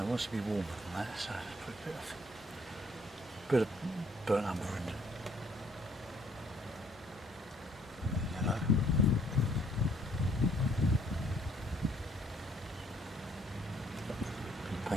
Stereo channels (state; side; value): normal; both; correlation 0.63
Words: it wants to be warmer than that, so let's put a bit of burnt umber in. Yellow.